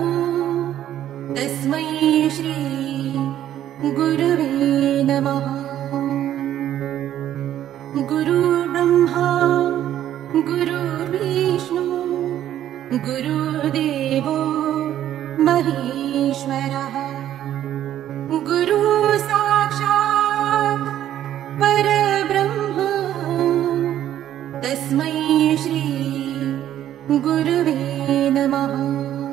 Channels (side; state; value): left; quieter; 11.6 dB